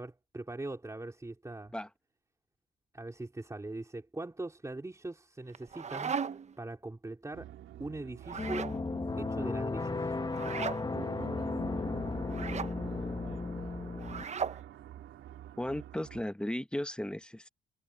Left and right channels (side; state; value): both; normal; correlation 0.69